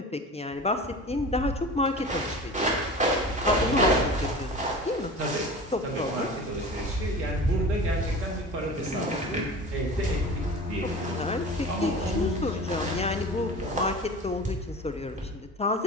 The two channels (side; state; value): both; normal; correlation 0.36